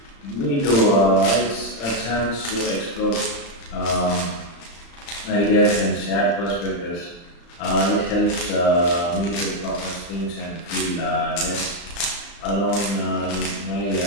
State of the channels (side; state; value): right; late; 35 ms